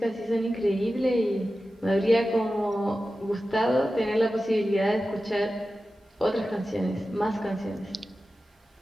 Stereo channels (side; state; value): both; normal; correlation 0.94